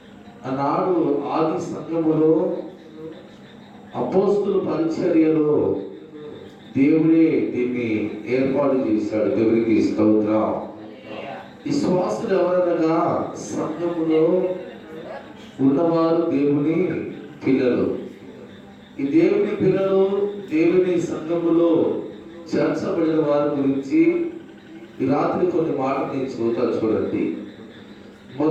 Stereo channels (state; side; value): identical; both; correlation 1.00